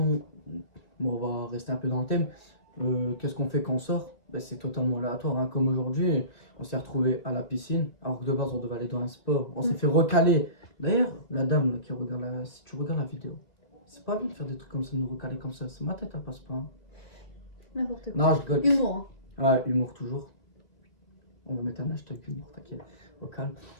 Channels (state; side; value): late; right; 2.2 ms